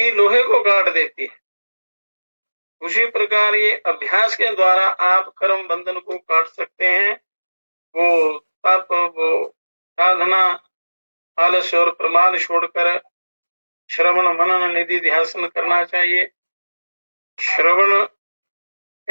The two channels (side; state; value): both; inverted; correlation -1.00